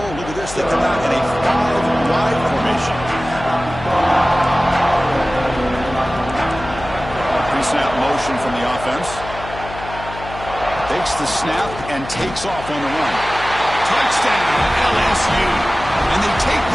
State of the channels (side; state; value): left; noise; hum, 12 dB below the sound